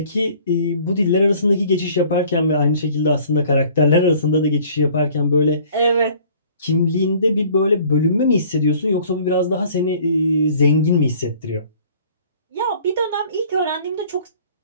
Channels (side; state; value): both; inverted; correlation -0.53